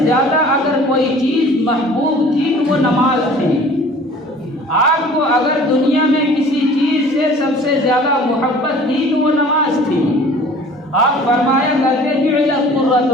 اگر کوئی چیز محبوب تھی تو وہ نماز تھی۔ آپ کو اگر دنیا میں کسی چیز سے سب سے زیادہ محبت تھی تو وہ نماز تھی۔ آپ فرمایا کرتے جعلت قرۃ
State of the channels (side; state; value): both; normal; correlation 0.48